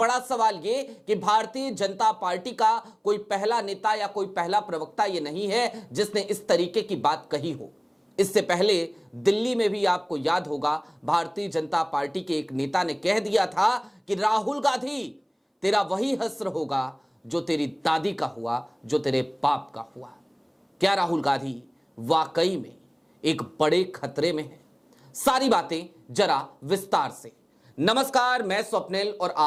सवाल ये कि भारतीय जनता पार्टी का कोई पहला नेता या कोई पहला प्रवक्ता ये नहीं है जिसने इस तरीके की बात कही हो। इससे पहले दिल्ली में भी आपको याद होगा, भारतीय जनता पार्टी के एक नेता ने कह दिया था कि राहुल गांधी, तेरा वही हश्र होगा जो तेरी दादी का हुआ, जो तेरे बाप का हुआ। क्या राहुल गांधी वाकई में एक बड़े खतरे में है? सारी बातें जरा विस्तार से। नमस्कार, मैं स्वप्निल और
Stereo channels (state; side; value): identical; both; correlation 1.00